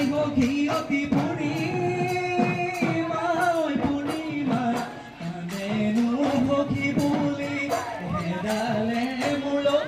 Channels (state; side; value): identical; both; correlation 1.00